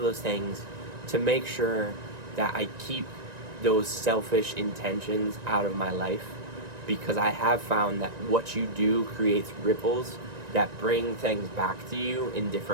things to make sure that I keep those selfish intentions out of my life, because I have found that what you do creates ripples that bring things back to you in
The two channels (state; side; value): late; left; 1.9 ms